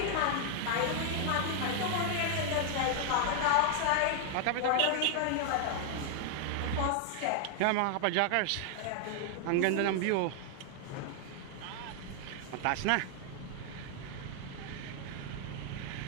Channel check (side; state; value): both; different; correlation 0.00